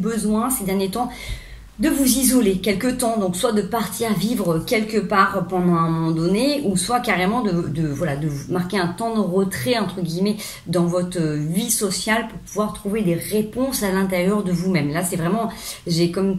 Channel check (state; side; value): identical; both; correlation 1.00